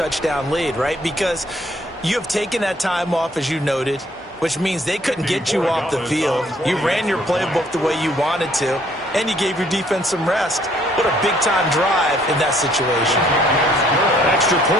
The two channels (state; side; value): normal; both; correlation 0.63